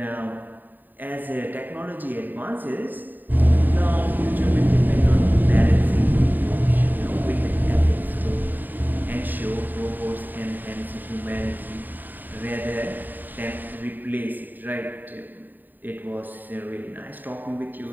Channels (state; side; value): late; left; 0.089 ms